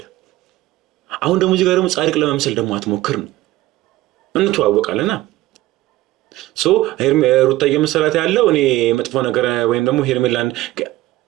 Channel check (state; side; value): quieter; left; 16.8 dB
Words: አሁን ደግሞ እዚህ ጋር ደግሞ ጻድቅ ለመምሰል ደግሞ አትሞክር ነው። እንተዋወቃለና ሩታ እየመሰላት ያለው እኔ መጥፎ ነገር ወይም ደግሞ ሄርሜላን